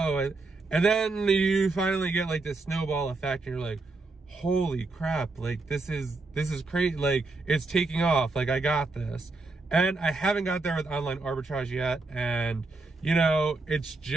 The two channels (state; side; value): quieter; left; 3.4 dB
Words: And then you finally get like this snowball effect and you're like, holy crap, like this is crazy. Like it's taking off, like I got this. And I haven't got there with online arbitrage yet. And you know, it's